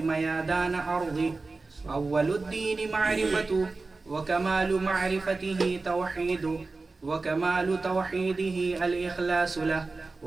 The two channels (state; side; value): quieter; left; 3.7 dB